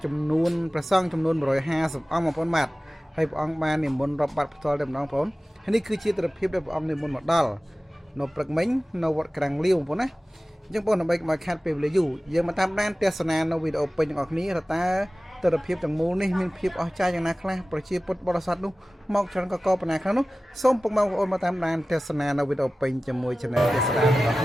ចំនួនព្រះសង្ឃចំនួន150អង្គបងប្អូនបាទហើយព្រះអង្គបាននិមន្តរាប់បាតផ្ទាល់តែម្ដងបងប្អូនហើយនេះគឺជាទិដ្ឋភាពដែលព្រះអង្គនិមន្តមកដល់នៅព្រឹកមិញនៅវត្តក្រាំងលាវបងប្អូនណាអញ្ចឹងបងដើម្បីកុំឲ្យខាត់ពេលវេលាយូរយើងមកតាមដានទស្សនានៅវីដេអូពេញទាំងអស់គ្នាតើទិដ្ឋភាពទាំងមូលនេះមានភាពអស្ចារ្យយ៉ាងណាខ្លះប្រជាពុទ្ធបរិស័ទនោះមកច្រើនកកបណ្ណាខ្លះនោះសូមពុកម៉ែបងប្អូនមកតាមដានទស្សនានៅវីដេអូពេញជាមួយ Channel ទេសនារបស់គ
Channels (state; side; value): normal; both; correlation 0.97